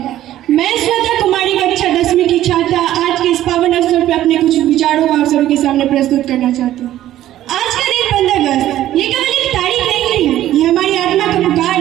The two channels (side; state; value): left; quieter; 13.3 dB